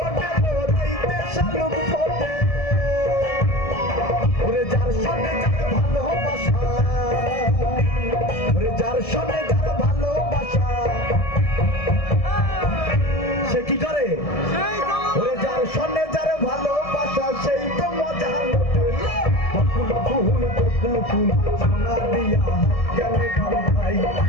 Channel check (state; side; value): late; right; 1.7 ms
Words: রাইতে শালুক ফোটে ওরে যার সামনে যার ভালোবাসা ওরে যার সামনে যার ভালোবাসা সে কি করে ওরে যার সামনে যার ভালোবাসা সেই তো মজা বকুল ফুল সোনা দিয়া কেনে বান্ধাই